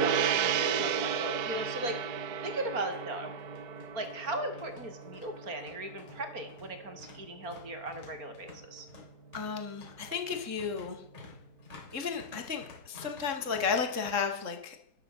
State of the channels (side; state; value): left; late; 3.7 ms